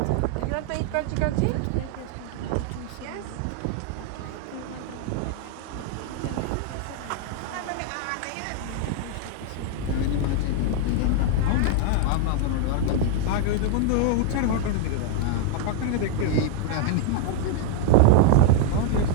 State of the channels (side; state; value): both; different; correlation 0.00